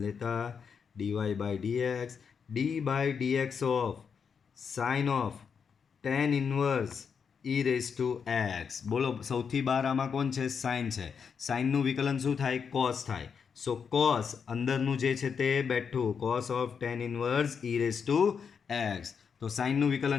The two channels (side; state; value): right; quieter; 6.4 dB